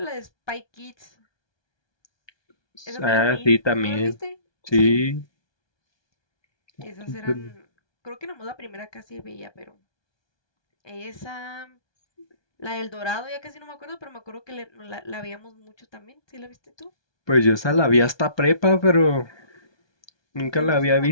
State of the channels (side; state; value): right; late; 1.2 ms